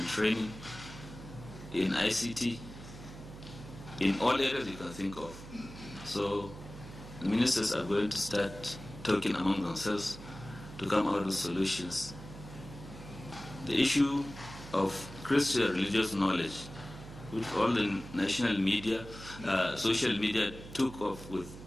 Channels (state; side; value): noise; right; hum, 14 dB below the sound